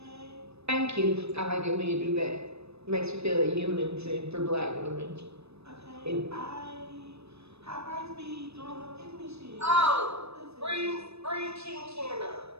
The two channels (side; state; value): left; late; 0.79 ms